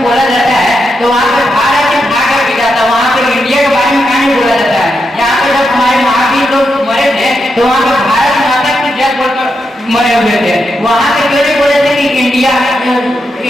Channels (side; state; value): both; normal; correlation 0.84